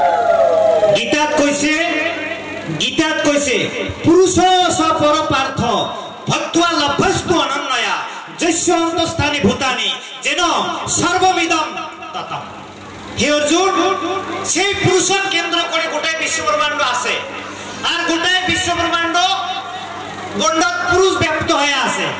গীতাত কইছে পুরুষ স পরপার্থ ভক্ত্বা লভ্যস্তু অনন্যয়া যস্য অন্তস্থানি ভূতানি যেন সর্বমিদম ততম। হে অর্জুন, সেই পুরুষক কেন্দ্র করে গোটাই বিশ্বব্রহ্মাণ্ড আছে। আর গোটাই বিশ্বব্রহ্মাণ্ড গণ্ডক পুরুষ ব্যক্ত হয়ে আছে,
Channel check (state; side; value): identical; both; correlation 1.00